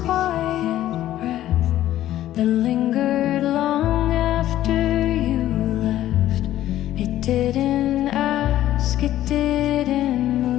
breath that lingered long after you left. It didn't ask, it didn't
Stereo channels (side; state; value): right; quieter; 13.3 dB